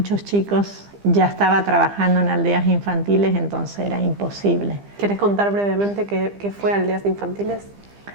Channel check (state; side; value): late; left; 15 ms